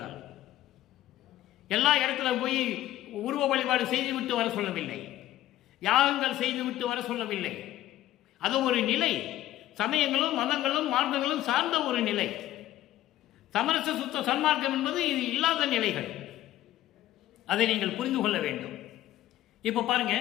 எல்லா இடத்துல போய் உருவ வழிபாடு செய்துவிட்டு வர சொல்லவில்லை, யாகங்கள் செய்துவிட்டு வர சொல்லவில்லை. அது ஒரு நிலை, சமயங்களும் மதங்களும் மார்க்கங்களும் சார்ந்த ஒரு நிலை. சமரச சுத்த சன்மார்க்கம் என்பது இது இல்லாத நிலைகள், அதை நீங்கள் புரிந்து கொள்ள வேண்டும். இப்போ பாருங்க,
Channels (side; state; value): right; quieter; 14.1 dB